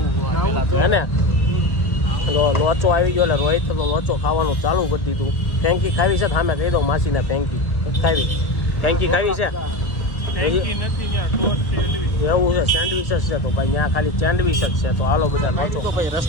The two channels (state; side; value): late; right; 1.3 ms